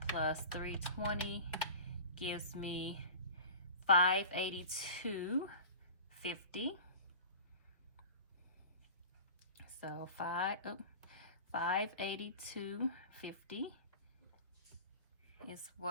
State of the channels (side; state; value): both; inverted; correlation -0.36